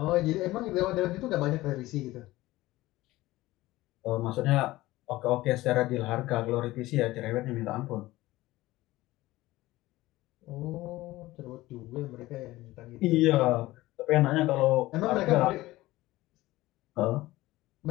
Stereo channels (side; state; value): right; quieter; 17.9 dB